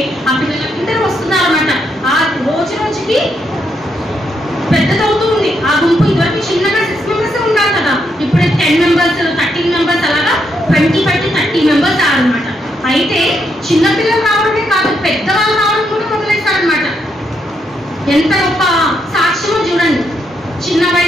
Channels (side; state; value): both; normal; correlation 0.78